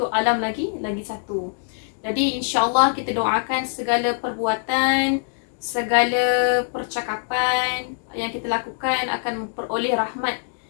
alam lagi satu. Jadi insya-Allah kita doakan segala perbuatan, segala percakapan yang kita lakukan akan memperoleh rahmat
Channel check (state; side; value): silent; right; digital silence